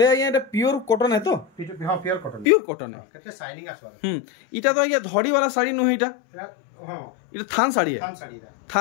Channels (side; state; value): right; drops out; at 2.5 s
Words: आज्ञा एटा प्योर कॉटन है तो हां प्योर कॉटन है केते शाइनिंग आसवा इटा तो आज्ञा धड़ी वाला साड़ी नु है इटा हां इटा थान साड़ी है